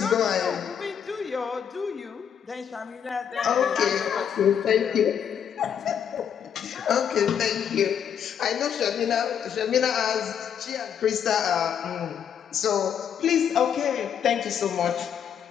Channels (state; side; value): quieter; right; 8.3 dB